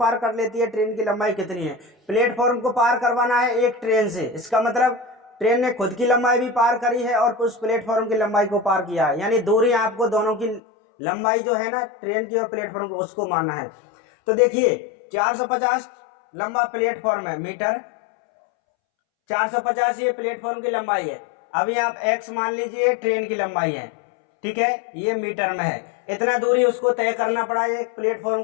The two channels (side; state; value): right; drops out; at 10.6 s